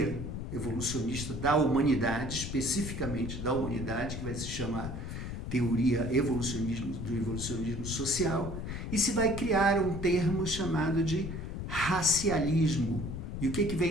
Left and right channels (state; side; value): noise; left; rumble, 6 dB below the sound